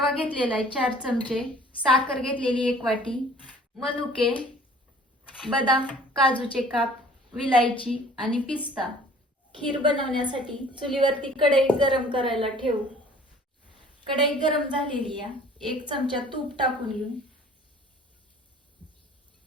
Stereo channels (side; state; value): both; normal; correlation 0.51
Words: घेतलेला आहे 4 चमचे, साखर घेतलेली 1 वाटी, मनुके, बदाम, काजूचे काप, विलायची आणि पिस्ता। खीर बनवण्यासाठी चुलीवरती कढई गरम करायला ठेवू। कढई गरम झालेली आहे, 1 चमचा तूप टाकून घेऊ।